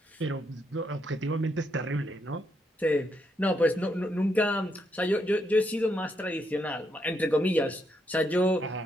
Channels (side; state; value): both; normal; correlation 0.78